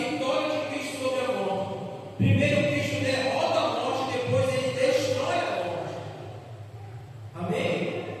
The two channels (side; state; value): both; identical; correlation 1.00